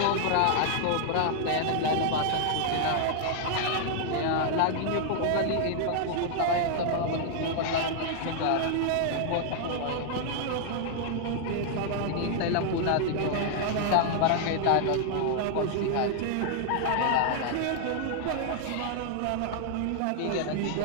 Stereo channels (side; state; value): both; different; correlation 0.00